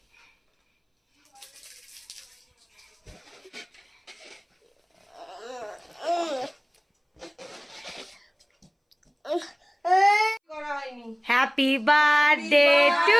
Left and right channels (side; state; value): both; identical; correlation 1.00